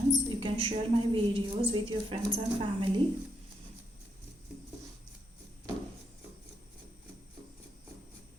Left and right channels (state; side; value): normal; both; correlation 0.78